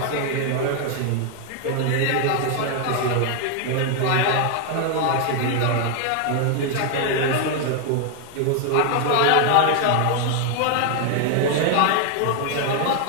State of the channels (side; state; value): both; different; correlation 0.00